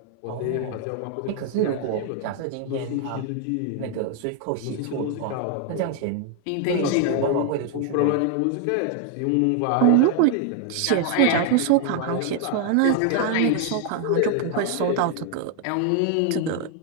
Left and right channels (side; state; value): both; different; correlation 0.00